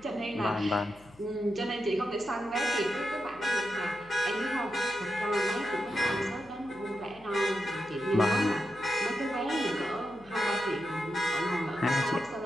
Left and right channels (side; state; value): left; noise; hum, 25 dB below the sound